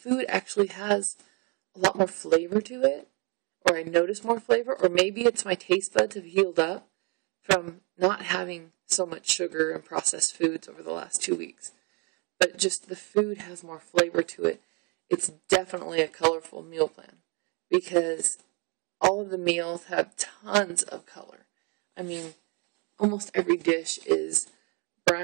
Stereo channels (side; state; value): left; quieter; 33.1 dB